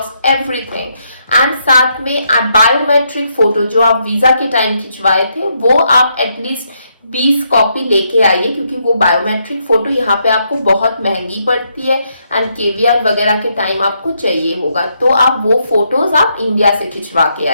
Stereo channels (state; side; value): inverted; both; correlation -0.77